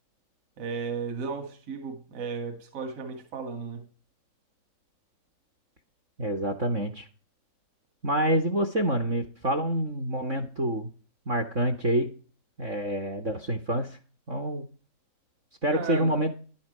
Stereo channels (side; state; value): left; late; 3.5 ms